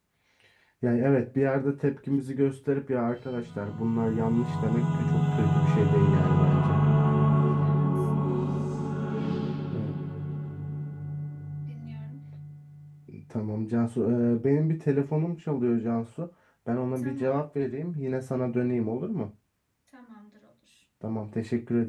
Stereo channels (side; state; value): both; identical; correlation 1.00